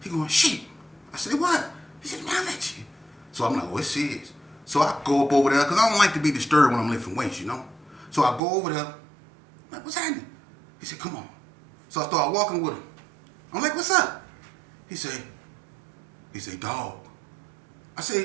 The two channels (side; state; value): left; drops out; at 8.4 s